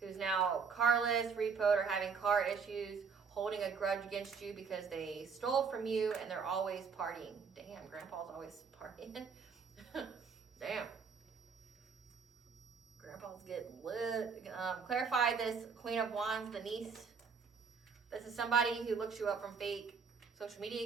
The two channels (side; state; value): left; quieter; 5.7 dB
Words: now carless, repoed, or having car issues, holding a grudge against you because they stole from you and they're always partying. Damn, grandpa's always partying. Damn. Grandpa's getting lit. Clarify this Queen of Wands, the niece. This is somebody who looks you up from fake social